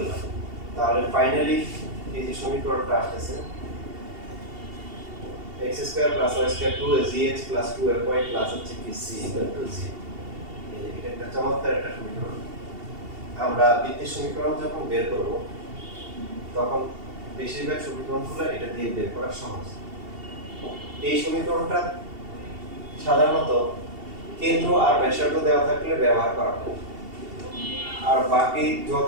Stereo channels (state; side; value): late; left; 2.7 ms